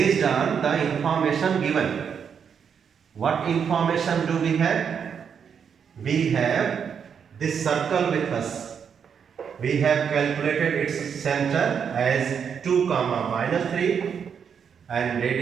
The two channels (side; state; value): left; quieter; 7.2 dB